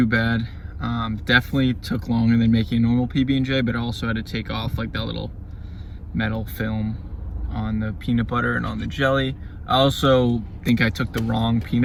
bad. Definitely took longer than making a normal PB&J, but I also had to take off like that little metal film on the peanut butter and on the jelly. I also think I took the wrong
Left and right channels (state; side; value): identical; both; correlation 1.00